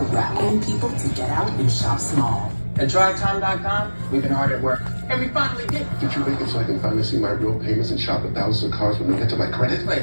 rallying people to get out and shop small. At DriveTime.com, we've been hard at work, and we finally did it. Did you make it so I can finally see my real payments and shop at thousands of cars when they get to my credit? Wait,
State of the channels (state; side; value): inverted; both; correlation -1.00